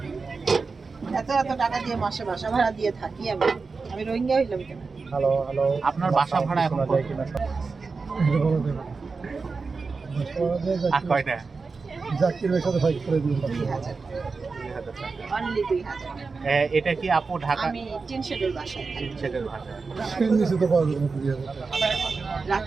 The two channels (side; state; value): left; quieter; 4.4 dB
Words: এত এত টাকা দিয়ে মাসে বাসা ভাড়া দিয়ে থাকি আমি। আমি রোহিঙ্গা হইলাম কেন? হ্যালো হ্যালো, আপনার বাসা ভাড়া এখন যায় কিনা আর কয়টা? জাকিরের সাথে ফাইট করে দিন। 2000 অনলি 2000। এটা কি আপু ঢাকা? আমি টিন শেডের বাসায় থাকি। সেটার ভাষা। সেন নিচে তো পাওয়া যাবে না 2000 টাকা।